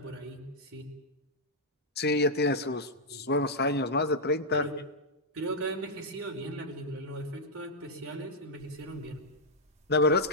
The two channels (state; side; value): normal; both; correlation -0.06